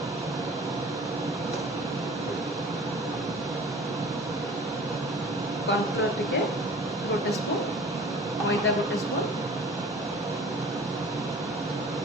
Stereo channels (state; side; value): normal; both; correlation 0.44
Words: कॉर्नफ्लोर टिके गोटे स्पून मैदा गोटे स्पून